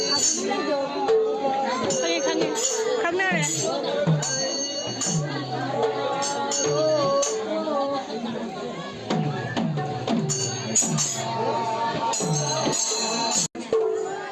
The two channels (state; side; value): identical; both; correlation 1.00